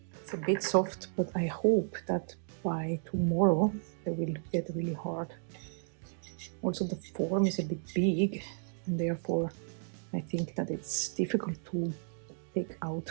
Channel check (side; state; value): left; silent; digital silence